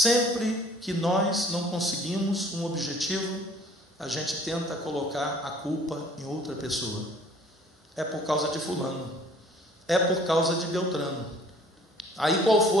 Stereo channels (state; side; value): normal; both; correlation 0.54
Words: que nós não conseguimos um objetivo, a gente tenta colocar a culpa em outra pessoa. É por causa de fulano, é por causa de Beltrano. Aí qual